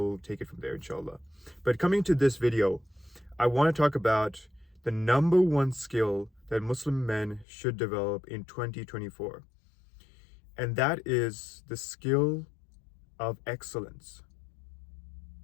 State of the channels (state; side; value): drops out; right; at 7.5 s